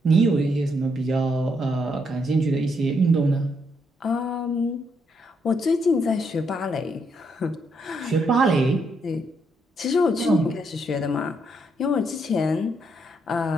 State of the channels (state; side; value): normal; both; correlation 0.76